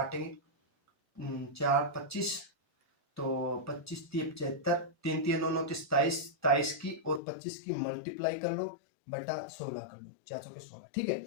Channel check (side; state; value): right; drops out; at 7.2 s